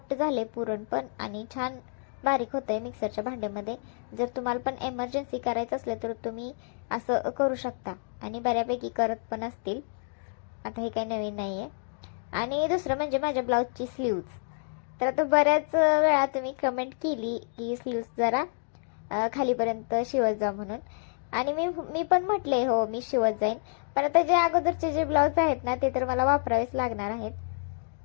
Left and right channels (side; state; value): right; silent; digital silence